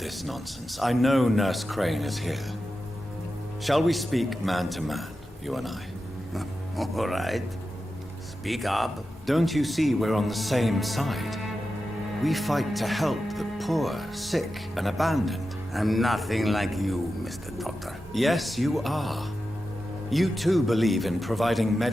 nonsense. I know Nurse Crane is here. Shall we speak man to man, you and I? All right. Speak up. Don't you see we're on the same side? We fight to help the poor, sick, and abandoned. I'm nothing like you, Mr. Doctor. Yes, you are. You too believe in providing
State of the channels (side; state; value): both; normal; correlation 0.91